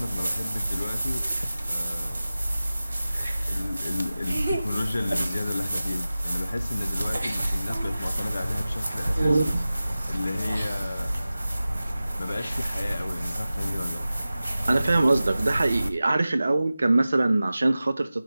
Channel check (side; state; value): both; inverted; correlation -0.96